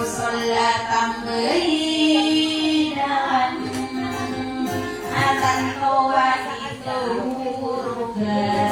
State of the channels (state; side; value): identical; both; correlation 1.00